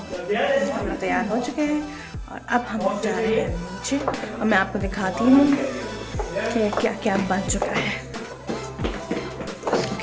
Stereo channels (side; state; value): both; identical; correlation 1.00